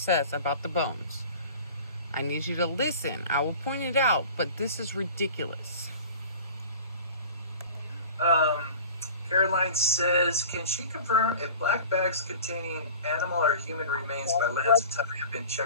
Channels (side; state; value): both; inverted; correlation -0.41